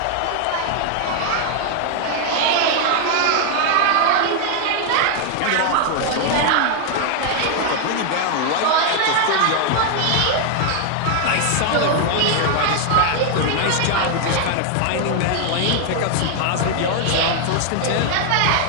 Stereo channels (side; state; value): both; different; correlation 0.00